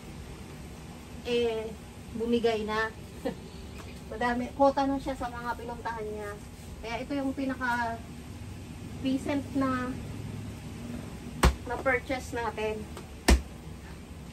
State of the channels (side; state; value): both; identical; correlation 1.00